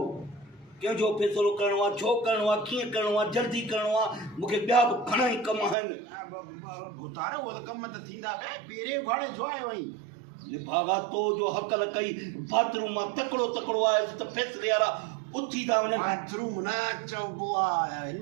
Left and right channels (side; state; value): left; drops out; at 5.8 s